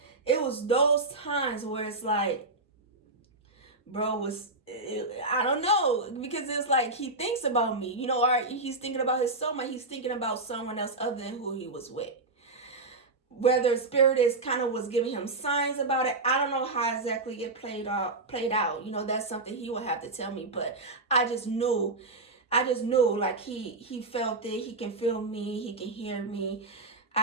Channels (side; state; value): left; quieter; 3.2 dB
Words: It was those times where it's like, bro I don't know, because it's like he thinks about me, you know, or he's thinking about his soulmate, he's thinking about someone else other than who he was with. Whether spirit is kind of was giving him signs about it, I don't know how exactly it played out. You know, that's something he would have to tell me, but I just knew like he felt it, he can feel me, he can hear me.